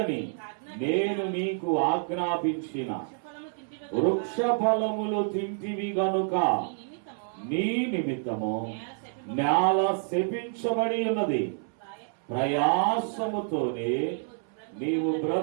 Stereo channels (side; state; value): left; silent; 59 dB below the other